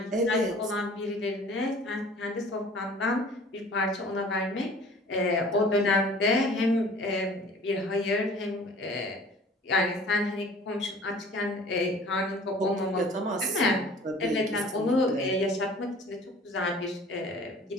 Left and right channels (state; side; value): normal; both; correlation 0.48